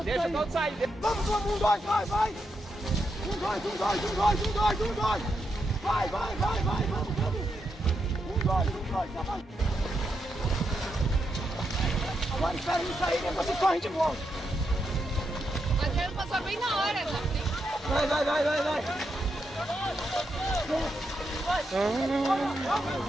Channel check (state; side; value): normal; both; correlation 0.83